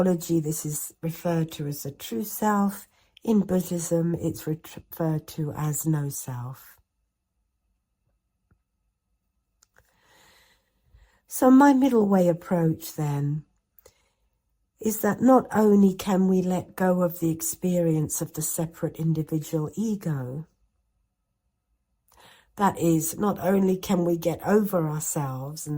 this is referred to as the true self. In Buddhism, it's referred to as no self. So my middle way approach then is that not only can we let go of the experience of the separate individual ego, that is, not only can we get over ourselves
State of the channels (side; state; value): both; identical; correlation 1.00